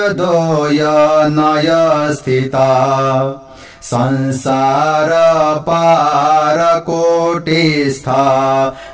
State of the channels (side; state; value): both; identical; correlation 1.00